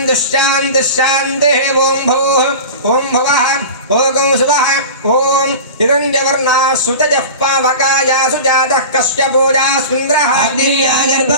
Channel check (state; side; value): inverted; both; correlation -0.33